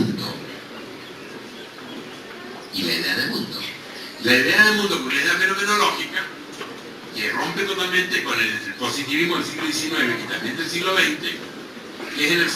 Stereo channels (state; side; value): identical; both; correlation 1.00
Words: Y la idea del mundo. La idea del mundo, con la idea fenomenológica, que rompe totalmente con el positivismo del siglo XIX y también del siglo XX, que es en el